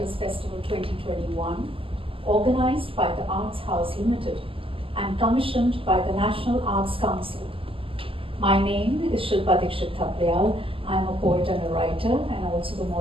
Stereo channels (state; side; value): late; left; 0.26 ms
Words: Festival 2021, organized by the Arts House Limited and commissioned by the National Arts Council. My name is Shilpa Dikshit Thaplayal. I'm a poet and a writer and also the